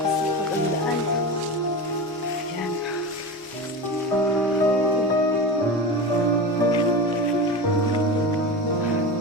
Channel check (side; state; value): both; normal; correlation 0.25